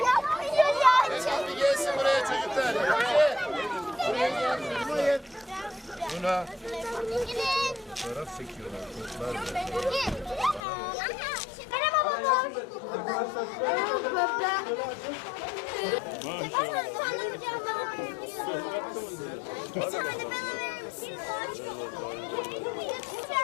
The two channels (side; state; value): right; drops out; at 10.6 s